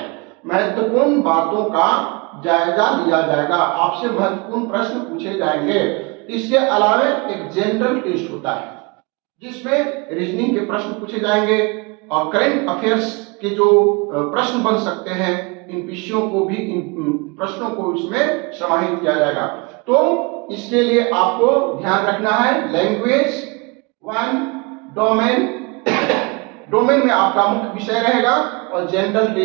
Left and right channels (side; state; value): left; quieter; 28.6 dB